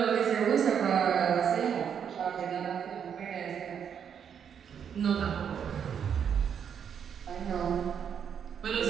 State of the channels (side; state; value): left; quieter; 7.9 dB